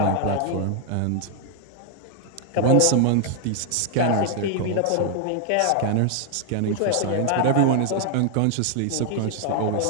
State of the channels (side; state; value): both; different; correlation 0.00